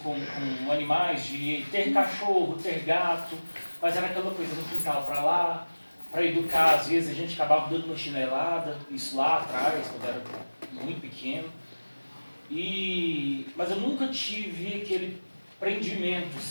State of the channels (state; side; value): inverted; both; correlation -1.00